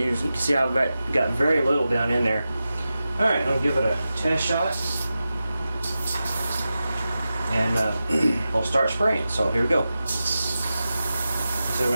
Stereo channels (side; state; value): both; inverted; correlation -0.92